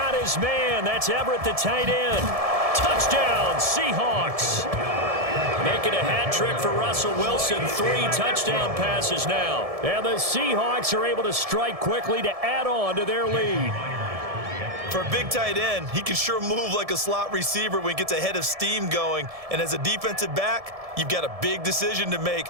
his man. That's Everett, the tight end. Touchdown, Seahawks. Making a hat trick for Russell Wilson. 3 touchdown passes now. And the Seahawks are able to strike quickly to add on to their lead. For a big tight end, he can sure move like a slot receiver when he gets a head of steam going. And as a defensive back, you've got a big decision to make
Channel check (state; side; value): late; left; 1.7 ms